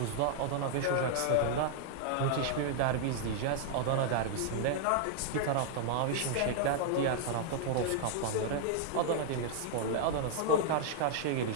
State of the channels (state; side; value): different; both; correlation -0.01